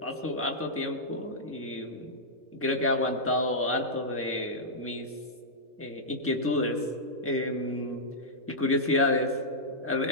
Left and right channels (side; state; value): both; normal; correlation -0.10